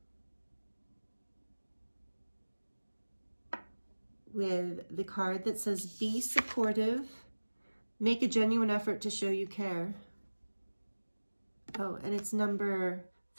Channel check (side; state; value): both; inverted; correlation -1.00